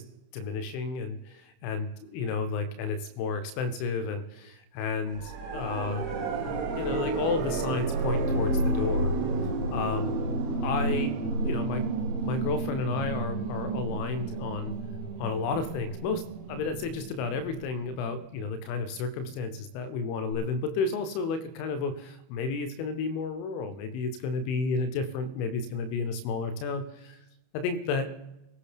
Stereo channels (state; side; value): late; right; 31 ms